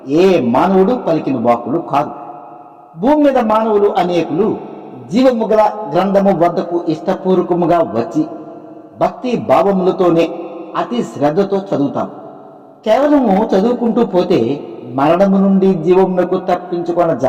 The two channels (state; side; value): identical; both; correlation 1.00